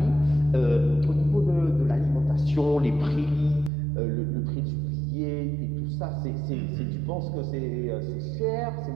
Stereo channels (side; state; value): left; drops out; at 3.7 s